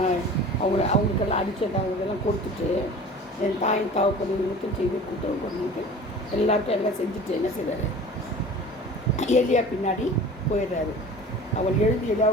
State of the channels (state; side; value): normal; both; correlation 0.41